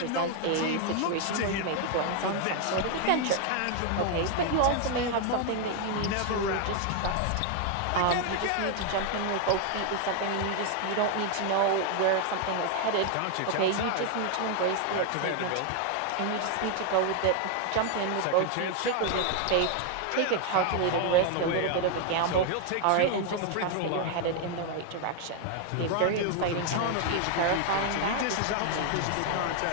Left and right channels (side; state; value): both; different; correlation 0.00